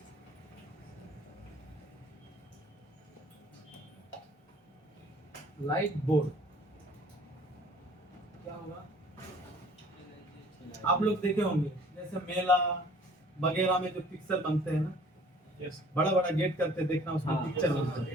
लाइट बोर्ड क्या होगा? आप लोग देखे होंगे जैसे मेला वगैरह में जो पिक्चर बनते हैं ना, बड़ा बड़ा गेट करते देखना, उसमें पिक्चर बनता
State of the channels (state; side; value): normal; both; correlation 0.52